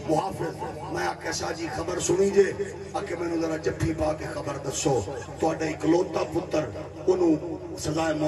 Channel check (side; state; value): both; identical; correlation 1.00